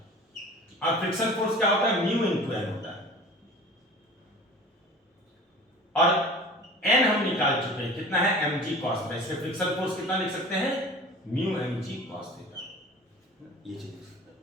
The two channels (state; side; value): normal; both; correlation 0.40